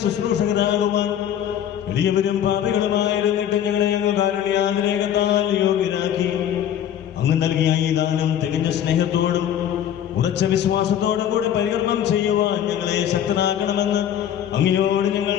ശുശ്രൂഷകരാകുവാൻ എളിയവരും പാപികളുമായിരുന്നിട്ട് ഞങ്ങളെ അങ്ങ് കാരുണ്യാതിരേകത്താൽ യോഗ്യരാക്കി. അങ്ങ് നൽകിയ ഈ ദാനം തികഞ്ഞ സ്നേഹത്തോടും ഉറച്ച വിശ്വാസത്തോടും കൂടെ പരികർമ്മം ചെയ്യുവാൻ ഞങ്ങളെ ശക്തരാക്കണമെന്ന് അങ്ങയോട് ഞങ്ങൾ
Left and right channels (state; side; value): quieter; right; 10.2 dB